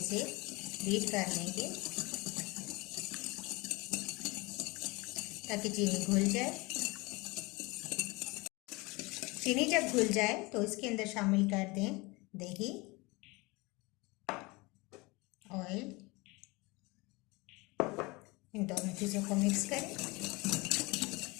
से बीट कर लेंगे ताकि चीनी घुल जाए। चीनी जब घुल जाए तो इसके अंदर शामिल कर दें दही, ऑयल, इन दोनों चीज़ों को मिक्स करें।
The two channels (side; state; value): right; quieter; 24.7 dB